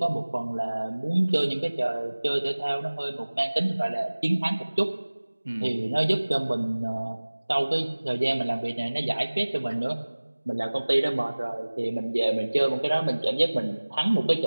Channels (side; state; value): both; inverted; correlation -1.00